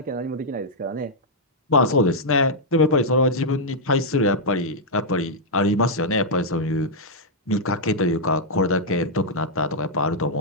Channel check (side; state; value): both; normal; correlation -0.05